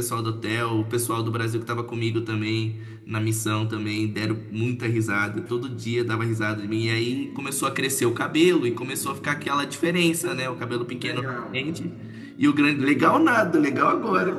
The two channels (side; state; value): both; identical; correlation 1.00